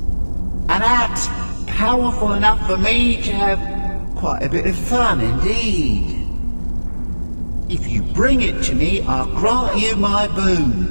An axe powerful enough for me to have quite a bit of fun indeed. If you bring it to me, I'll grant you my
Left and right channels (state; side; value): inverted; both; correlation -1.00